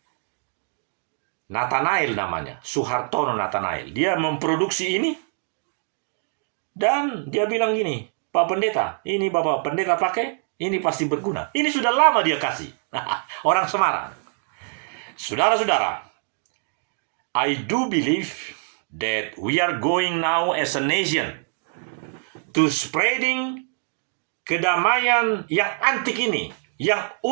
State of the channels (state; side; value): silent; left; 62 dB below the other